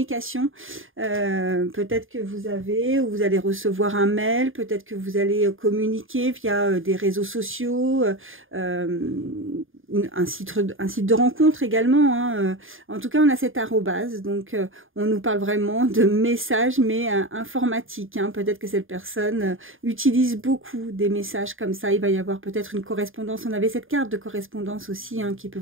peut-être que vous avez ou vous allez recevoir un mail, peut-être que vous allez communiquer via des réseaux sociaux, un site de rencontre également, hein. En tout cas, on a cette arrobase, donc on nous parle vraiment de messages, mais informatiques, hein. Peut-être que cette personne utilise beaucoup des messages comme ça. Il va y avoir peut-être une correspondance. On avait cette carte de correspondance aussi, hein, qui peut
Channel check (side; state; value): left; late; 0.59 ms